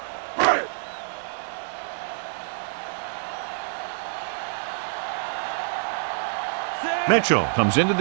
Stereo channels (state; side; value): silent; left; 61 dB below the other